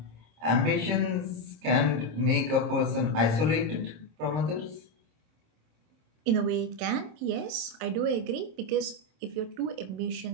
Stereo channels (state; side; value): late; left; 26 ms